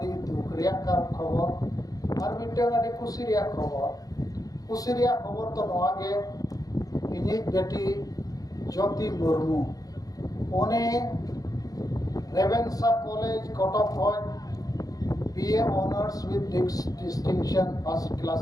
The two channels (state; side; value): late; right; 0.18 ms